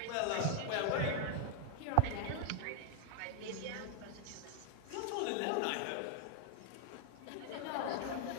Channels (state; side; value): different; both; correlation 0.00